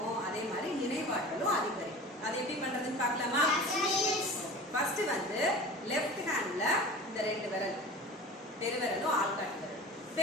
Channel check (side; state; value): both; normal; correlation 0.37